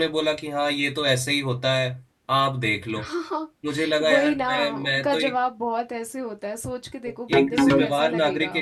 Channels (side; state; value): both; identical; correlation 1.00